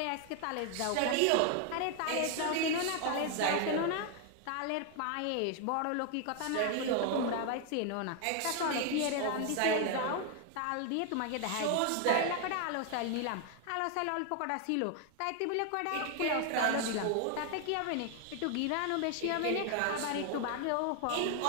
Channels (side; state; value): both; different; correlation 0.01